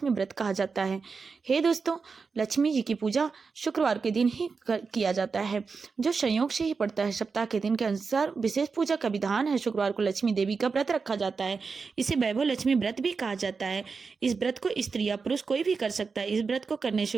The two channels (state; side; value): quieter; left; 4.9 dB